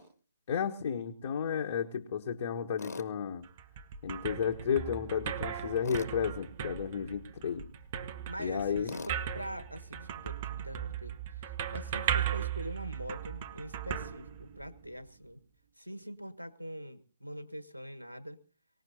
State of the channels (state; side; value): inverted; both; correlation -0.52